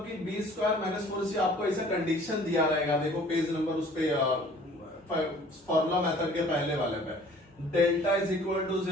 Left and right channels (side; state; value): both; normal; correlation 0.52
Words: कि बी स्क्वायर माइनस 4ac आपको ऐसा कंडीशन दिया रहेगा, देखो पेज नंबर उस पे फॉर्मूला मेथड के पहले वाले पे, delta is equal to